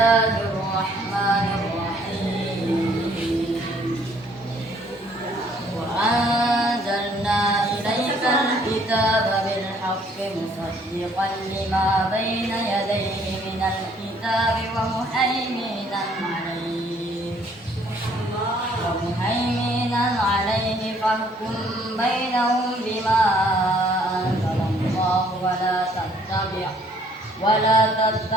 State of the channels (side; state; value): both; normal; correlation 0.62